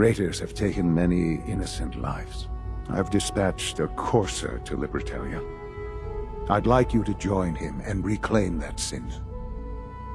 have taken many innocent lives. I've dispatched a courser to Libertalia. I'd like you to join him and reclaim that synth.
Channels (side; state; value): both; identical; correlation 1.00